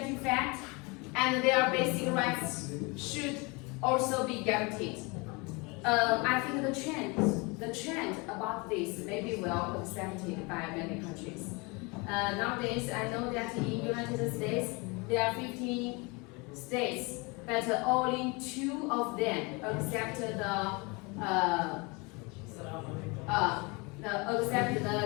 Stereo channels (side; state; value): right; quieter; 28.1 dB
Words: fact, and their basic rights should also be guaranteed. I think the trend about this may be well accepted by many countries. Nowadays, I know that in the United States, there are 15 states, but only 2 of them accept the